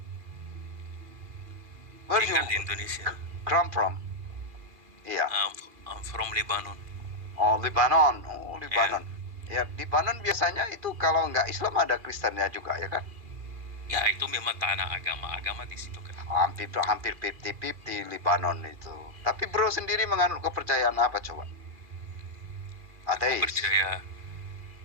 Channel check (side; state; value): left; late; 2.4 ms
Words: Where you tinggal di Indonesia. come from? Iya. I'm from Lebanon. Oh, Lebanon. Oh, Ya, Lebanon. Ya, Lebanon biasanya itu kalau nggak Islam ada Kristennya juga, ya kan? ya itu memang tanah agama di situ kan. Hampir 50-50 Lebanon itu. Tapi bro sendiri menganut kepercayaan apa coba? Aku Ateis? percaya,